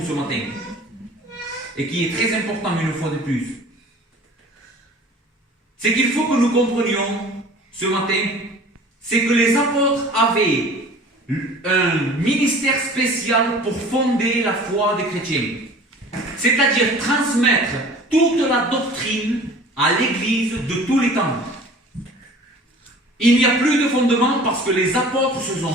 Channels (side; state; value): both; normal; correlation 0.45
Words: ce matin, et qui est très important une fois de plus, c'est qu'il faut que nous comprenions ce matin, c'est que les apôtres avaient un ministère spécial pour fonder la foi des chrétiens. C'est-à-dire transmettre toute la doctrine à l'Église de tous les temps. Il n'y a plus de fondement parce que les apôtres se